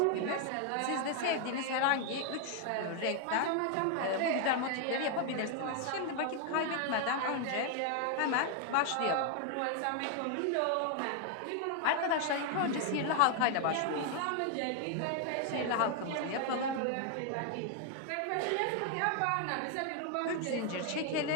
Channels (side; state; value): both; different; correlation 0.00